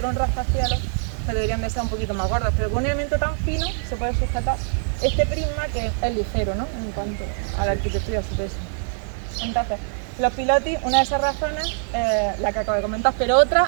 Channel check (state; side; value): silent; left; 63 dB below the other